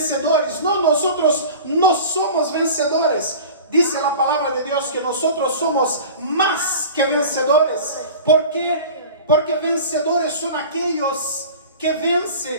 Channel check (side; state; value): both; inverted; correlation -0.37